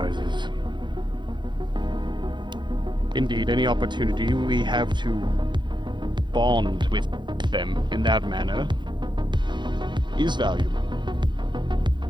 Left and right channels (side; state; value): left; late; 0.22 ms